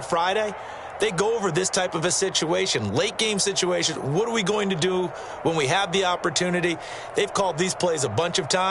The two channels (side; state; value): both; identical; correlation 1.00